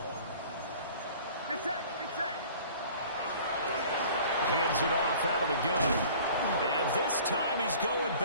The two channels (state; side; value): inverted; both; correlation -0.48